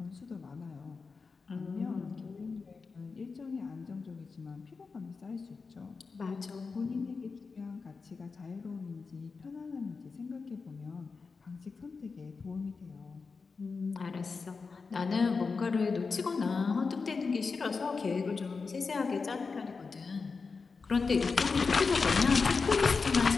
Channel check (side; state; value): right; quieter; 4.7 dB